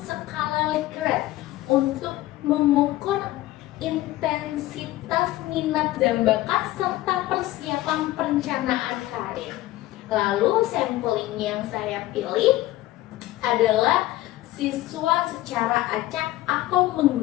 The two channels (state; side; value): quieter; right; 16.4 dB